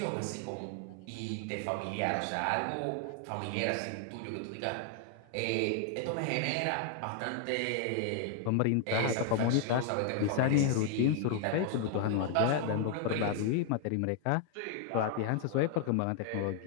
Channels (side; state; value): both; different; correlation 0.00